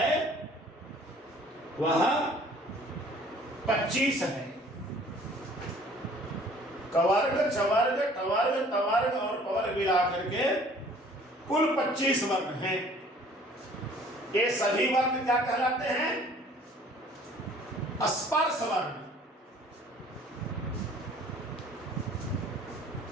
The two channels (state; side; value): normal; both; correlation 0.53